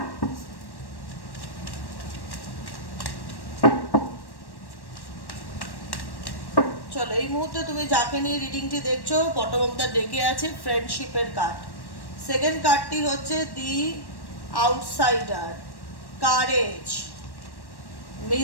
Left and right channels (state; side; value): late; right; 1.1 ms